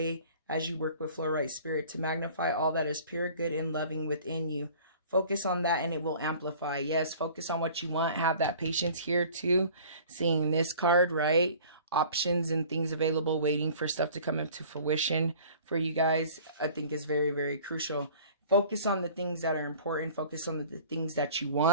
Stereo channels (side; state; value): both; inverted; correlation -0.48